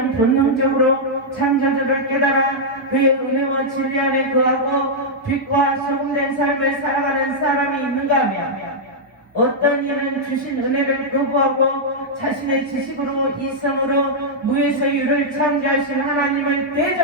본능적으로 창조주를 깨달아 그의 은혜와 진리 안에 거하고 빛과 소금된 삶을 살아가는 사람이 있는가 하면 어떤 이는 주신 은혜를 거부하고 자신의 지식으로 이성으로 무에서 유를 창조하신 하나님을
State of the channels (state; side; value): normal; both; correlation -0.06